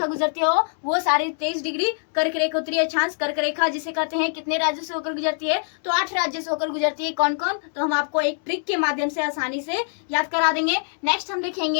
गुजरती हो वो 23.5 डिग्री कर्क रेखा उत्तरी अक्षांश। कर्क रेखा जिसे कहते हैं कितने राज्यों से होकर गुजरती है? तो 8 राज्यों से होकर गुजरती है। कौन कौन? तो हम आपको एक ट्रिक के माध्यम से आसानी से याद करा देंगे। नेक्स्ट हम देखेंगे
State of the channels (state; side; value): silent; right; 63 dB below the other